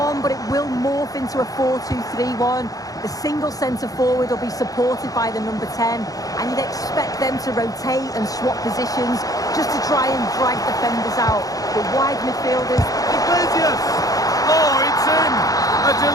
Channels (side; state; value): right; late; 0.17 ms